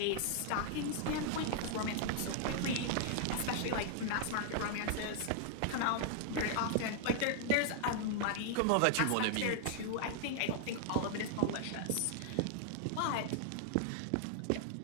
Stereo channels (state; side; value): different; both; correlation 0.00